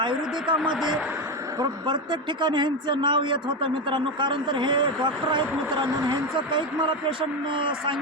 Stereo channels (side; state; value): both; normal; correlation 0.13